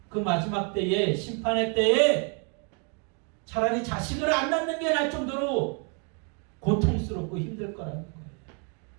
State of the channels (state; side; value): quieter; left; 37.6 dB